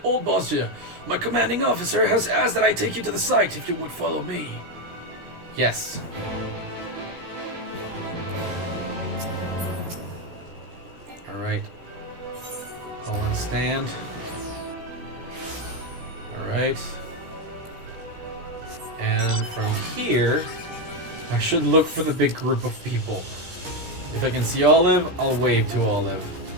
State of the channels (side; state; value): left; late; 17 ms